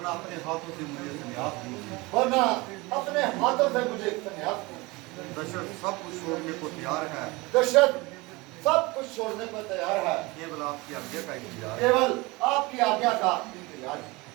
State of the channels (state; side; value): quieter; left; 23.6 dB